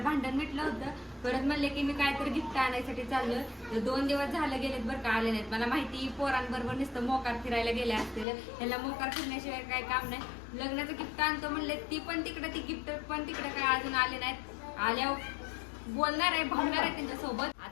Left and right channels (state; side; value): drops out; right; at 8.2 s